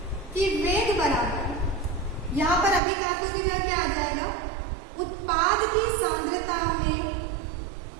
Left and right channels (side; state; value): left; drops out; at 2.8 s